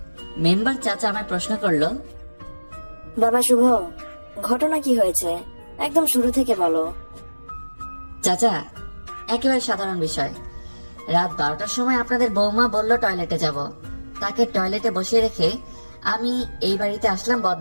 মেম্বার চাচা আমায় প্রশ্ন করলো, বাবা শুভ, ঘটনা কি হয়েছে একদম শুরু থেকে বলো। চাচা একেবারে সাধারণ বিষয়। রাত 12টার সময় আপনাদের বৌমা বলল টয়লেটে যাব। তাকে টয়লেটে বসিয়ে রেখে আমি এই বাড়িতে আসলাম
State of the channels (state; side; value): inverted; both; correlation -1.00